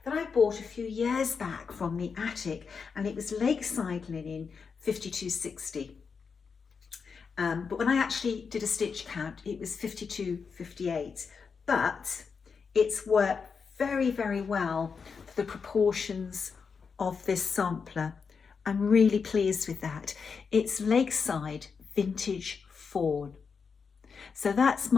that I bought a few years back from the attic, and it was Lakeside linen 5260. But when I actually did a stitch count, it was 5258. But it's worked very well for the proportions of this sampler. I'm really pleased with that. It's Lakeside Vintage Fawn. So that's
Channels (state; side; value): quieter; right; 5.6 dB